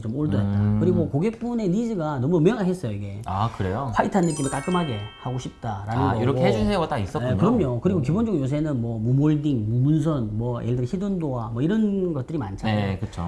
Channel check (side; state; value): both; identical; correlation 1.00